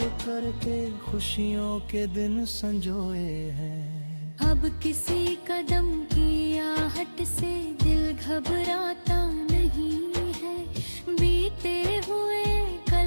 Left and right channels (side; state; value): both; inverted; correlation -1.00